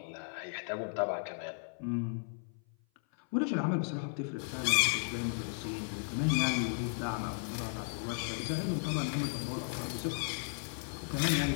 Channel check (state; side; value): silent; right; 54 dB below the other